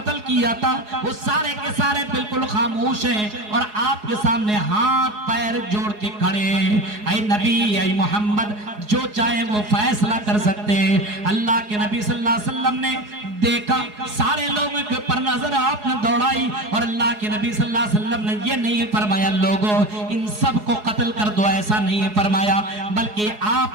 کیا تھا، وہ سارے کے سارے بالکل خاموش ہیں اور آپ کے سامنے ہاتھ پیر جوڑ کے کھڑے ہیں. اے نبی، اے محمد، جو چاہے وہ فیصلہ کر سکتے ہیں. اللہ کے نبی صلی اللہ علیہ وسلم نے دیکھا، سارے لوگوں کے پر نظر آپ نے دوڑائی اور اللہ کے نبی صلی اللہ علیہ وسلم نے یہ نہیں فرمایا لوگوں ان سب کو قتل کر دو، ایسا نہیں فرمایا، بلکہ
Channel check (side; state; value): left; late; 4.8 ms